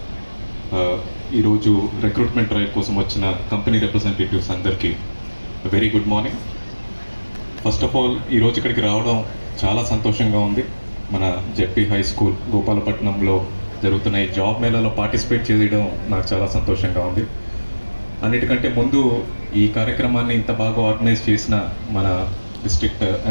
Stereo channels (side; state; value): both; inverted; correlation -1.00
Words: ఈరోజు రిక్రూట్మెంట్ డ్రైవ్ కోసం వచ్చిన కంపెనీ రిప్రజెంటేటివ్స్ అందరికీ very good morning. First of all ఈరోజు ఇక్కడికి రావడం చాలా సంతోషంగా ఉంది. మన జెడ్పీ హై స్కూల్ గోపాలపట్నంలో జరుగుతున్న ఈ జాబ్ మేళాలో పార్టిసిపేట్ చేయడం నాకు చాలా సంతోషంగా ఉంది. అన్నిటికంటే ముందు ఈ కార్యక్రమాన్ని ఇంత బాగా ఆర్గనైజ్ చేసిన మన డిస్ట్రిక్ట్